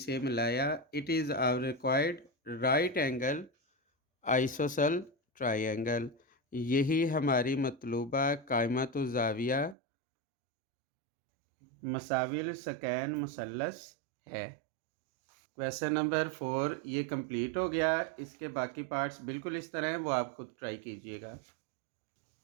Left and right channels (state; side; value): drops out; left; at 9.8 s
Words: मिलाया। It is our required right angle isosceles triangle. यही हमारी मतलूबा कायमत ज़ाविया मसाविल सकैन मुसल्लस है। क्वेश्चन नंबर 4 ये कंप्लीट हो गया। इसके बाकी पार्ट्स बिल्कुल इस तरह हैं, वो आप खुद ट्राई कीजिएगा।